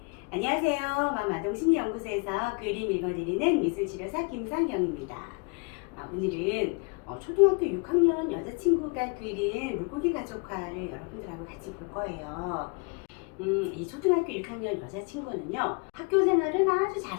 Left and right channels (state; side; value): quieter; right; 33.3 dB